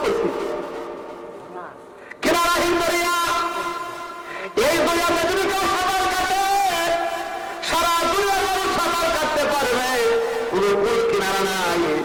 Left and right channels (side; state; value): both; identical; correlation 1.00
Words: করছি কিনারাহীন দরিয়া, এই দরিয়াতে যদি কেউ সাঁতার কাটে, সারা দুনিয়ার মানুষ সাঁতার কাটতে পারবে, কোন কুল কিনারা নাই।